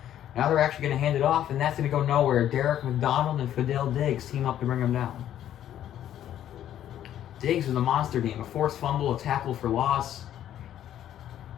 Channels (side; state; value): right; quieter; 11.2 dB